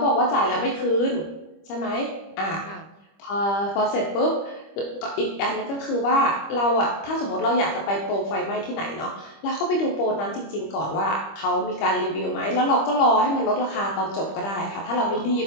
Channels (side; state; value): right; late; 25 ms